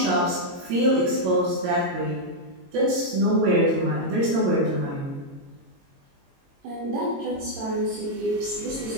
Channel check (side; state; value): left; late; 22 ms